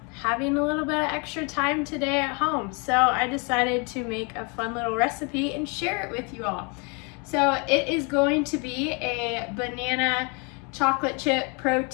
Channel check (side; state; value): right; quieter; 33.1 dB